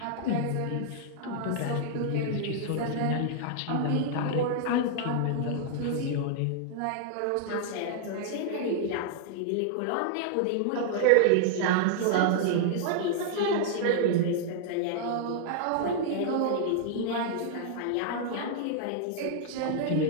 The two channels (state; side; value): different; both; correlation -0.01